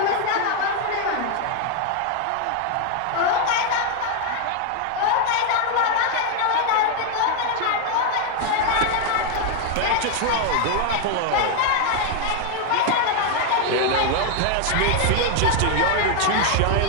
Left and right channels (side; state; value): both; different; correlation 0.00